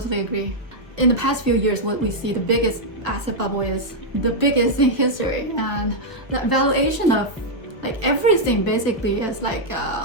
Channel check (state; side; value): normal; both; correlation -0.04